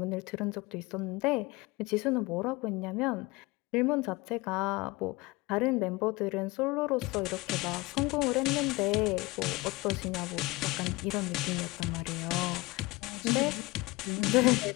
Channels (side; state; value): right; quieter; 22.1 dB